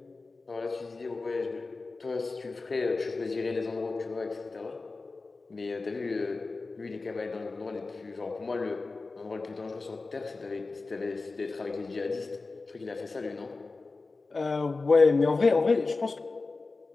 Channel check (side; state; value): right; quieter; 3.7 dB